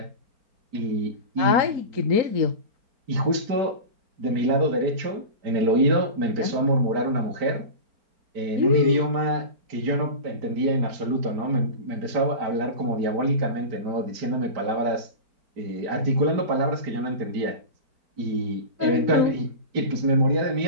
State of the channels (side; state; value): left; late; 4.4 ms